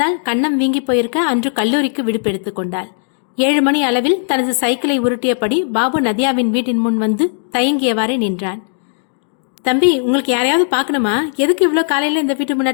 கன்னம் வீங்கி போயிருக்க அன்று கல்லூரிக்கு விடுப்பு கொண்டாள். 7 மணி அளவில் தனது சைக்கிளை உருட்டியபடி பாபு நதியாவின் வீட்டின் முன் வந்து தயங்கியவாறே நின்றான். தம்பி, உங்களுக்கு யாரையாவது பார்க்கணுமா? எதுக்கு இவ்வளோ காலையில் இந்த வீட்டு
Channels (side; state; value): right; silent; digital silence